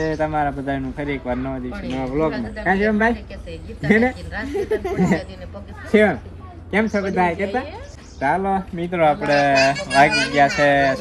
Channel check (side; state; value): both; identical; correlation 1.00